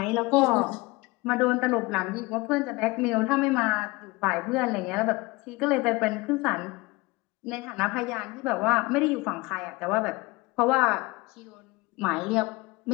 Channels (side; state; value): right; quieter; 23.1 dB